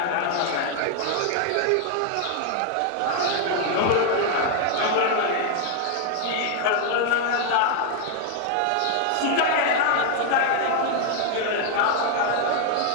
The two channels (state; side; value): different; both; correlation 0.00